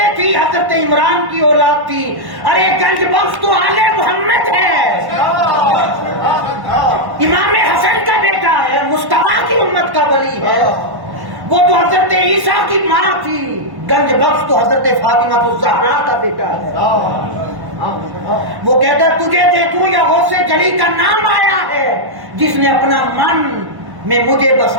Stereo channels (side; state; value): left; late; 1.1 ms